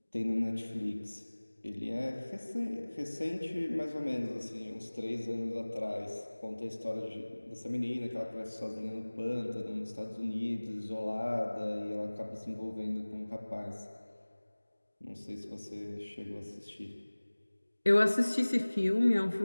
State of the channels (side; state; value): both; inverted; correlation -1.00